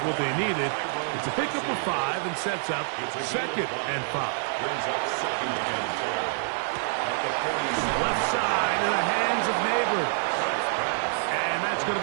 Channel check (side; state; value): left; silent; 60 dB below the other